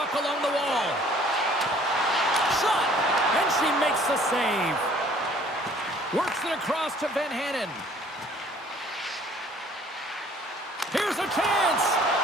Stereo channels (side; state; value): both; normal; correlation 0.56